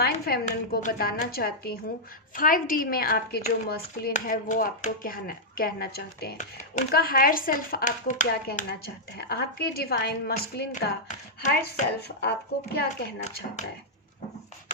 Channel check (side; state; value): both; normal; correlation -0.07